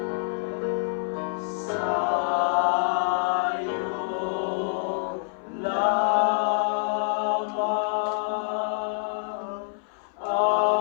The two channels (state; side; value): silent; right; 59 dB below the other